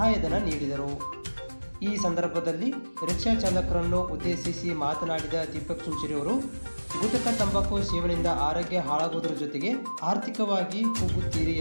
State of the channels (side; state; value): both; inverted; correlation -1.00